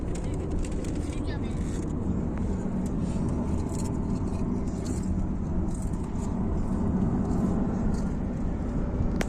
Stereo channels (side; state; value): both; identical; correlation 1.00